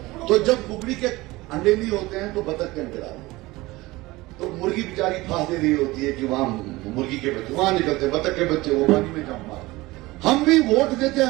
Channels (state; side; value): quieter; left; 20.2 dB